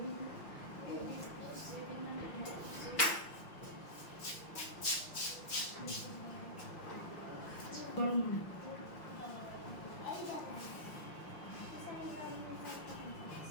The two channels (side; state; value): right; late; 6.0 ms